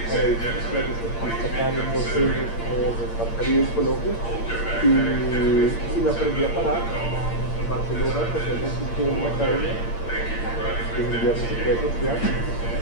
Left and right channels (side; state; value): right; late; 8.7 ms